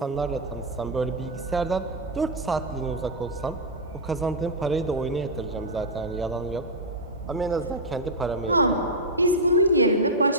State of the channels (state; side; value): normal; both; correlation -0.04